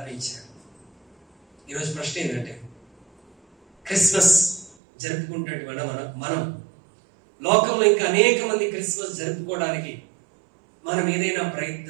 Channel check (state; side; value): drops out; left; at 4.8 s